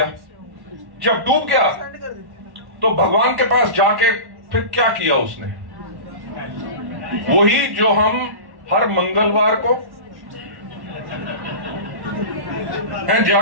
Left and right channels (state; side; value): late; left; 1.1 ms